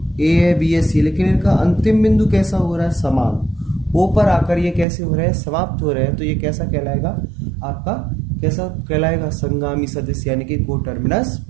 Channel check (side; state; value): left; drops out; at 4.9 s